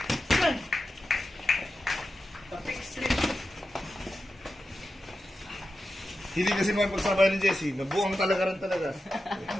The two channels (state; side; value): normal; both; correlation 0.91